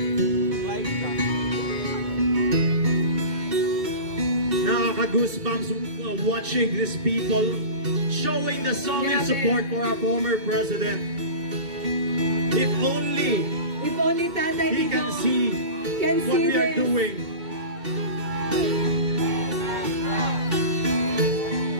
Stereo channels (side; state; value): left; late; 2.2 ms